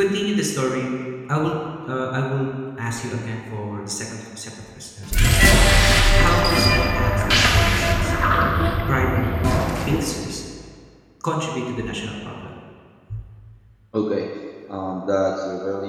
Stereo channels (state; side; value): identical; both; correlation 1.00